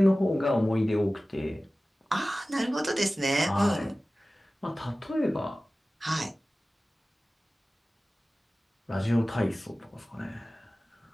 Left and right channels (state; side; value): normal; both; correlation 0.97